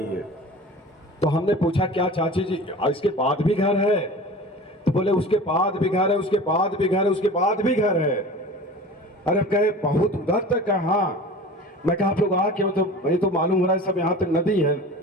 हैं। तो हमने पूछा क्या चाची जी इसके बाद भी घर है? तो बोले उसके बाद भी घर है, उसके बाद भी घर है, उसके बाद भी घर है। अरे कहे बहुत उधर तक है? हाँ। मैं कहा आप लोग आ क्यों? तो ये तो मालूम हो रहा है सब यहाँ तक नदी है,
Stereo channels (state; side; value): normal; both; correlation 0.38